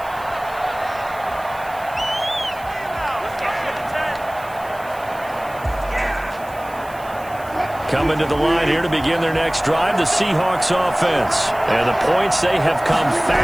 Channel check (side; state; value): right; noise; hiss, 22 dB below the sound